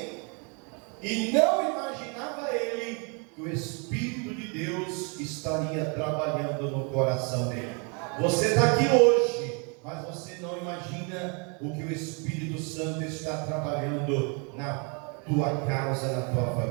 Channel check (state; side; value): quieter; left; 35.0 dB